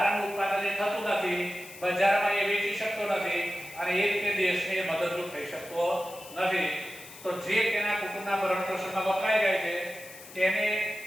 ઉત્પાદન એ થતું નથી, બજારમાં એ વેચી શકતો નથી અને એ રીતે દેશને મદદરૂપ થઈ શકતો નથી. તો જે તેના કુટુંબના ભરણ પોષણમાં વપરાઈ જાય છે તેને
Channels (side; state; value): left; noise; hiss, 17 dB below the sound